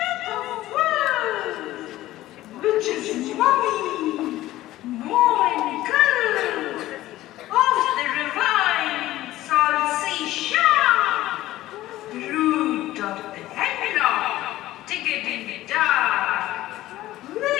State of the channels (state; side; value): quieter; right; 15.6 dB